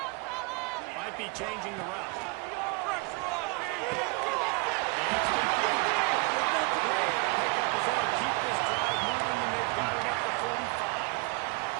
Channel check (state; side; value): quieter; left; 28.5 dB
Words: Might be changing the route. Keep this drive moving, and they've got it up to 45.